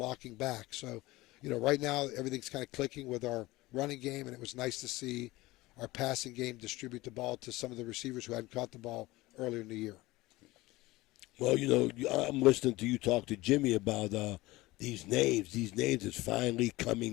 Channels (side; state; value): right; quieter; 19.6 dB